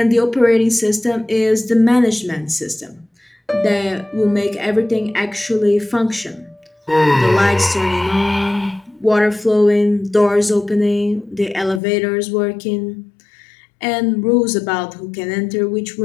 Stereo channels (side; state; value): right; drops out; at 11.8 s